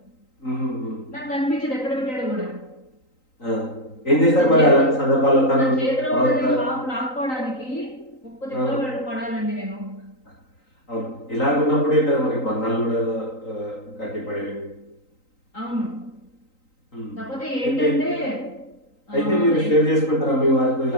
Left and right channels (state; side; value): late; right; 3.9 ms